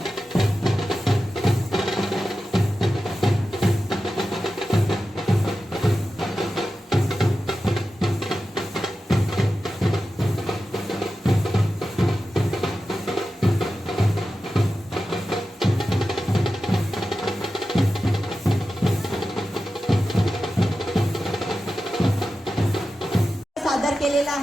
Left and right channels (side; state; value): both; normal; correlation 0.92